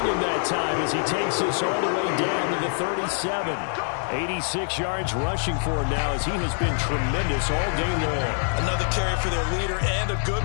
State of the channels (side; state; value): right; silent; digital silence